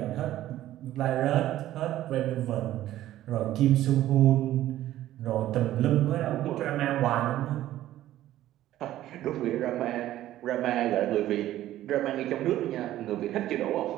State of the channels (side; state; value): left; quieter; 13.8 dB